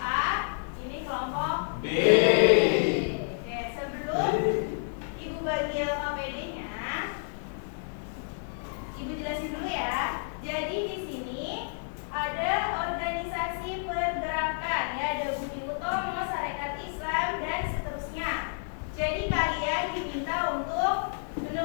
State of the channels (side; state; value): right; silent; 58 dB below the other